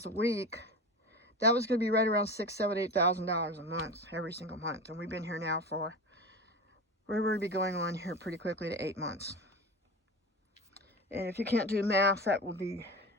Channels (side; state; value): both; normal; correlation 0.29